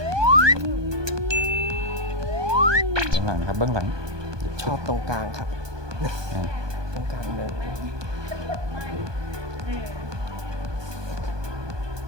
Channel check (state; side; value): late; left; 1.2 ms